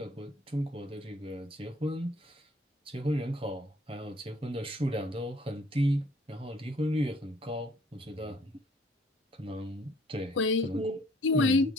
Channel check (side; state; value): both; normal; correlation 0.60